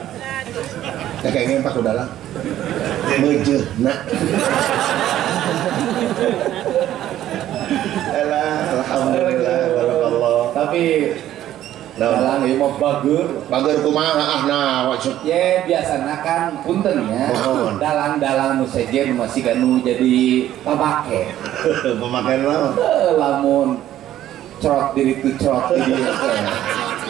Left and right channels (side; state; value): left; quieter; 12.6 dB